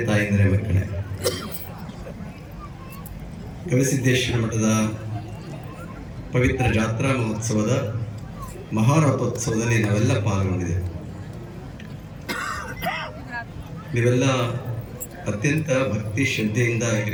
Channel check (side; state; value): both; identical; correlation 1.00